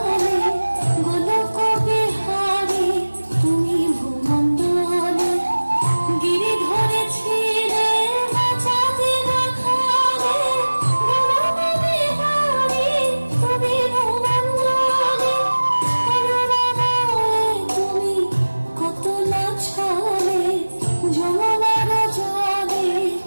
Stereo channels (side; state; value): both; inverted; correlation -1.00